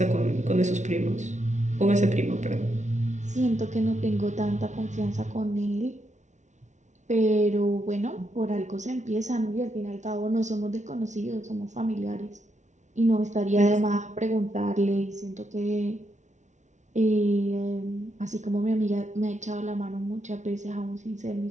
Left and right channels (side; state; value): left; late; 0.35 ms